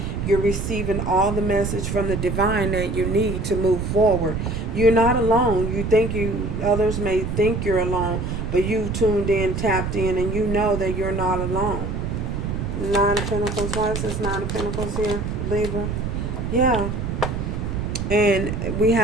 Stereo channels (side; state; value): right; noise; rumble, 3 dB below the sound